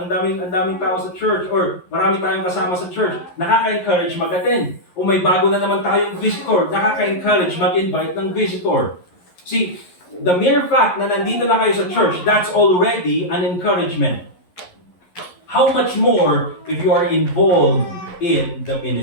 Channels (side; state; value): right; late; 11 ms